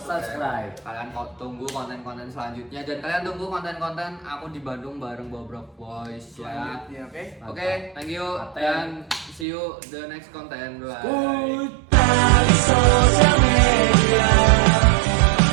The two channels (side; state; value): left; drops out; at 9.5 s